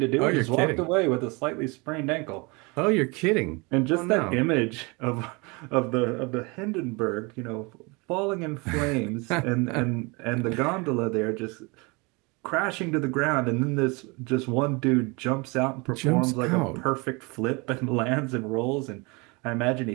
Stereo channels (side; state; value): left; quieter; 28.0 dB